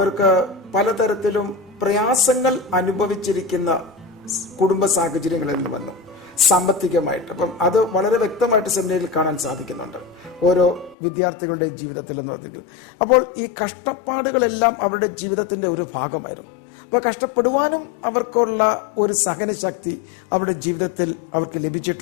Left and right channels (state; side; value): drops out; right; at 11.0 s